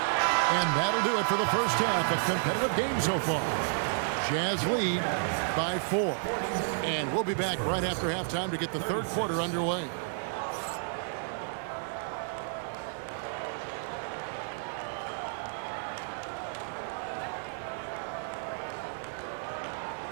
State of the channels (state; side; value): silent; left; digital silence